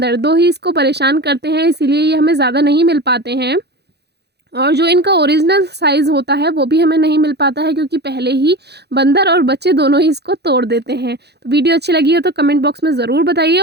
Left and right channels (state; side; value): late; left; 0.48 ms